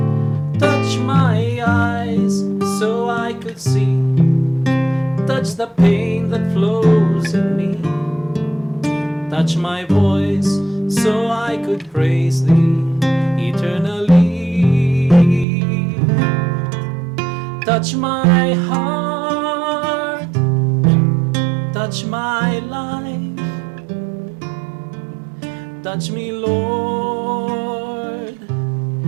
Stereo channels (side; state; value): left; drops out; at 15.5 s